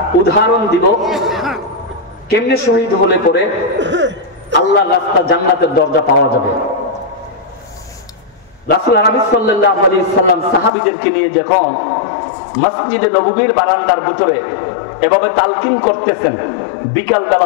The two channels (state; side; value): drops out; right; at 10.7 s